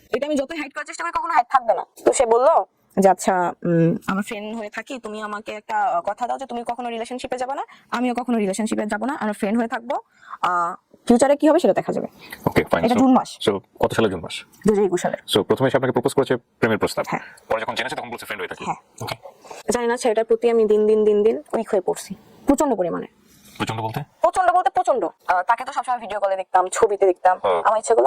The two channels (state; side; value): identical; both; correlation 1.00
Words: এটা আমি যতই হাইড করার চেষ্টা করি কখনো হাইড থাকবে না। তো সে বললো যে আচ্ছা, আমার ফ্রেন্ড হয়ে থাকি, তুমি আমাকে একটা কথা দাও যে তুমি কখনো রিলেশনশিপে যাবে না, আমিও কখনো রিলেশনশিপে যাব না, আমরা ফ্রেন্ড হয়ে থাকবো, ফিউচারে কি হবে সেটা দেখা যাবে। ওকে, ফাইন। এটা জুন মাস। সো কত সালে? জুন মাস 2021 সালে। সো প্রথমে এসে আপনাকে প্রপোজ করেছে প্রেমের প্রস্তাব, হ্যাঁ। পরে যখন জেনেছে তখন বলছে ফ্রেন্ড হয়ে থাকি। হ্যাঁ, জানি না ছেলেটার প্রতি আমি দিন দিন উইক হয়ে পড়ছি প্রচন্ড পরিমাণে। প্রচন্ড বলতে? প্রচন্ড। তাকে তো সবসময় ভিডিও কলে দেখতাম, ছবিতে দেখতাম, আমার ইচ্ছা করলো